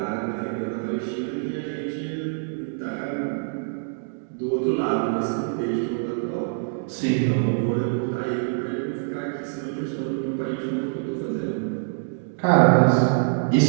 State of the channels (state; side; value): silent; left; digital silence